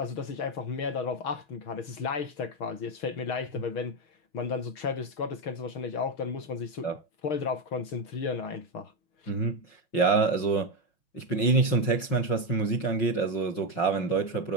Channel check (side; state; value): right; late; 5.4 ms